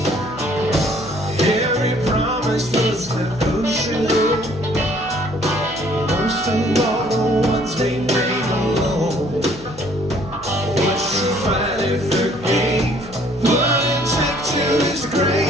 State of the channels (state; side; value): noise; left; hum, 19 dB below the sound